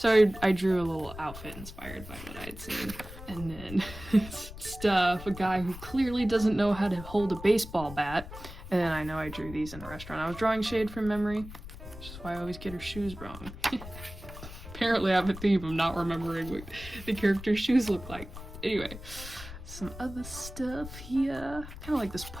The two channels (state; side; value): noise; left; rumble, 13 dB below the sound